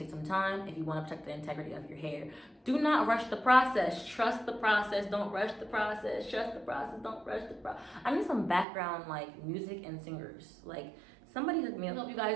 some time if you wanna protect the integrity of your hair. Do not rush the process. Trust the process. Don't rush the process. Trust the process. Don't rush the process. I need some background like music and singers. Like, somebody hook me up. I hope you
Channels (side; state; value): left; drops out; at 8.7 s